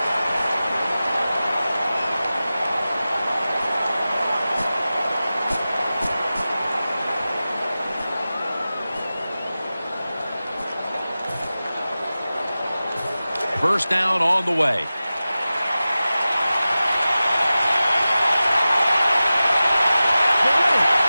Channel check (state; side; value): inverted; both; correlation -0.95